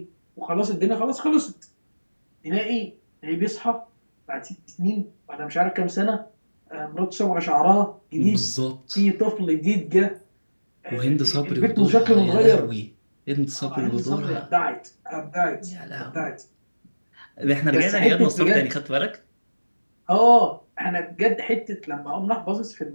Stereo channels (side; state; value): both; inverted; correlation -1.00